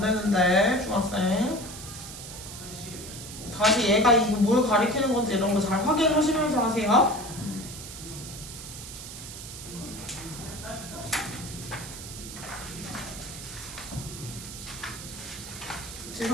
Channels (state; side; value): noise; right; hiss, 11 dB below the sound